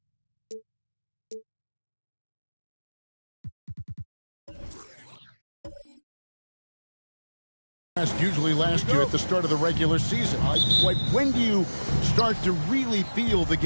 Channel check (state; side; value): inverted; both; correlation -1.00